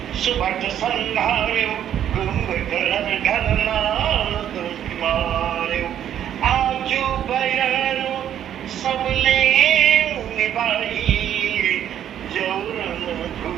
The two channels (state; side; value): quieter; left; 10.3 dB